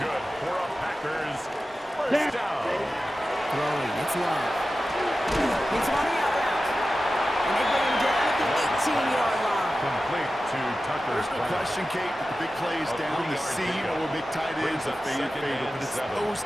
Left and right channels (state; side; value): normal; both; correlation 0.94